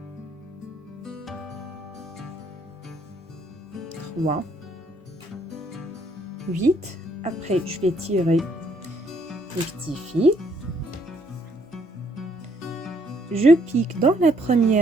3, 8. Après, je vais tirer les petits fils. Je pique dans la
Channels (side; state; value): both; normal; correlation 0.68